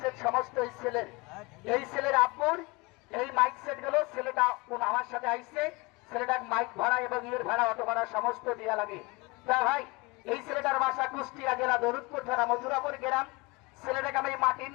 সমস্ত এই ছেলের আব্বুর এই মাইক সেট গুলো ছেলেটা আমার সাথে আইসে, ছেলেটার মাইক ভাড়া এবং ইয়ের ভাড়া অটো ভাড়া সমস্ত দেওয়া লাগে। তা ভাই এই ছেলেটার বাসা কুষ্টিয়া জেলা দরুদপুর থানা মথুরাপুর গ্রাম। ছেলেটাকে আমি মাটির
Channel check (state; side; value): quieter; right; 25.7 dB